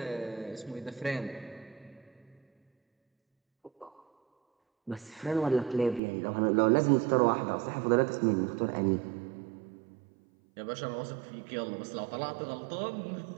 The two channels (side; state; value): left; drops out; at 6.0 s